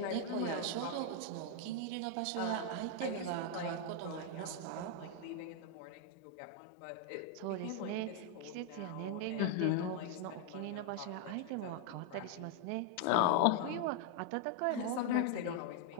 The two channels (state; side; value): different; both; correlation 0.00